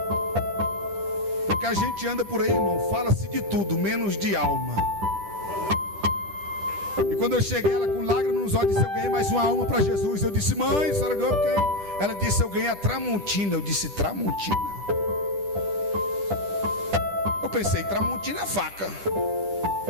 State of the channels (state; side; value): late; left; 10 ms